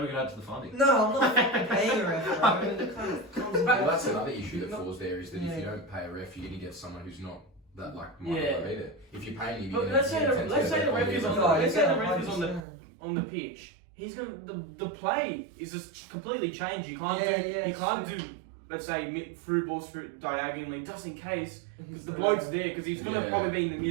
we could add to the funding. No, I'm not fucking paying a ref, bro. I mean, it kind of comes Well, back. that's another issue that falls there is that if Yeah. you don't pay a ref, you're going to get someone who's not that like Yeah. minded either. If you're paying him, But let's say the ref is on No, let's say the yeah, ref is on the 100%. on the pitch. He's gonna the play is just completely changed. You can't Yeah, do yeah, you can't sure. do let's say through balls through diagonally just in case because He's the bloke's there because he's gonna Yeah. probably be in the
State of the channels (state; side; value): drops out; left; at 12.6 s